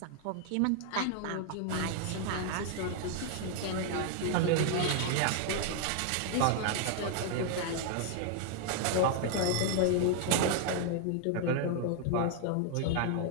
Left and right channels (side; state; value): both; different; correlation 0.00